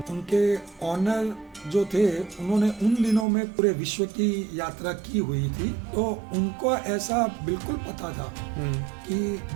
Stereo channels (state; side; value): drops out; left; at 3.2 s